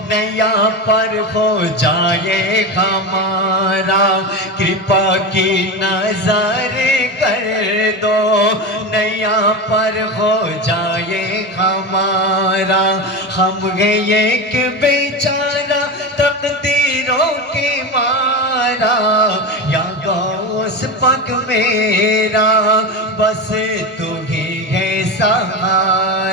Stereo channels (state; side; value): normal; both; correlation 0.21